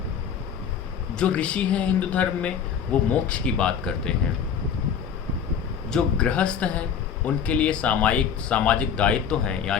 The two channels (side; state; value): right; quieter; 7.5 dB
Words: जो ऋषि हैं हिंदू धर्म में वो मोक्ष की बात करते हैं। जो गृहस्थ हैं उनके लिए सामाजिक दायित्व हैं,